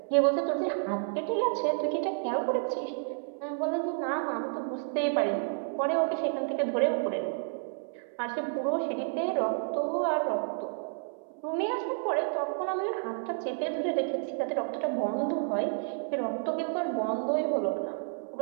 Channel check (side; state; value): left; silent; 57 dB below the other